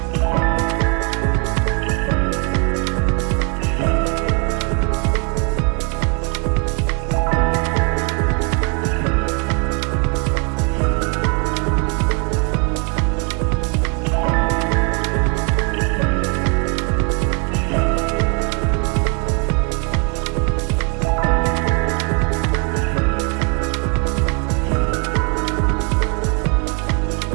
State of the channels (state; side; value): quieter; left; 36.0 dB